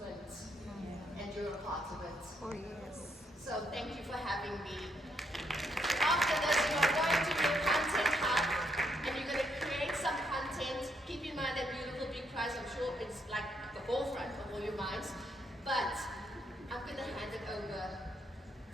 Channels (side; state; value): both; normal; correlation 0.75